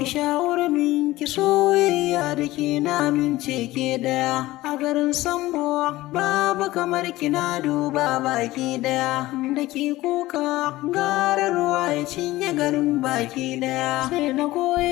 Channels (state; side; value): quieter; right; 17.7 dB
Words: shawar min ki soyayya soyayya da ke na mince ke daya a garin Sambo babu kamar kina duba baki daya da ke kuka gara ruwa ya cinye garin baki daya sai na